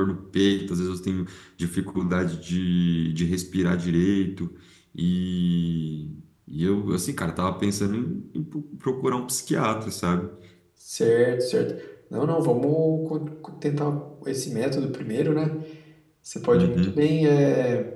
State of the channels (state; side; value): identical; both; correlation 1.00